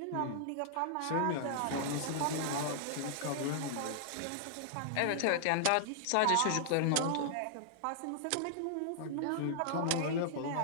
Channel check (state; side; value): different; both; correlation -0.01